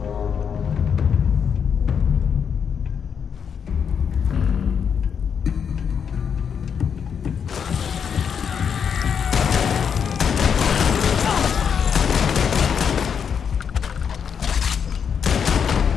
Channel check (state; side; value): quieter; right; 7.2 dB